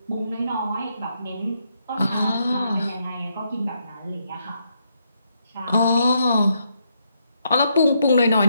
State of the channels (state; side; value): inverted; both; correlation -0.77